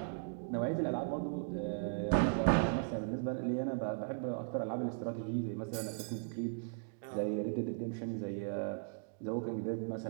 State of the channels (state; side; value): silent; left; digital silence